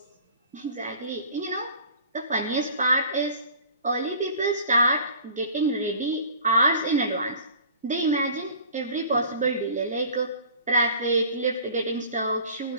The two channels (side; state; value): both; inverted; correlation -0.45